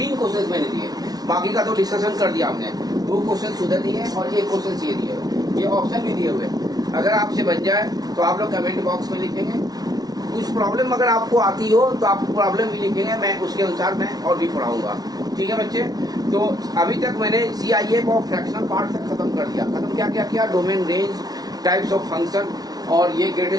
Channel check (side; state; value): left; late; 0.19 ms